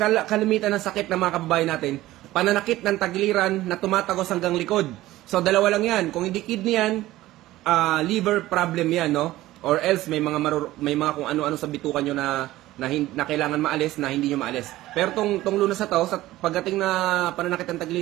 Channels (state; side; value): quieter; left; 16.3 dB